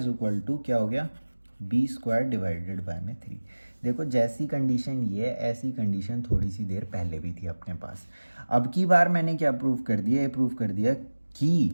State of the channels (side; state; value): both; inverted; correlation -1.00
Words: equal to क्या हो गया, बी स्क्वायर डिवाइडेड बाय में 3। देखो जैसी कंडीशन ये ऐसी कंडीशन थोड़ी सी देर पहले भी थी अपने पास। अब की बार मैंने क्या प्रूव कर दिया, ये प्रूव कर दिया